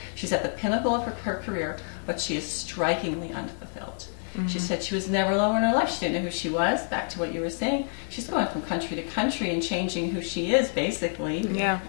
she's at the pinnacle of her career, but she is strikingly unfulfilled. She said she was never lower in her life. She didn't know who she was. Back to what you were saying. She's going from country to country and changing who she is, basically,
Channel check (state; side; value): silent; right; 59 dB below the other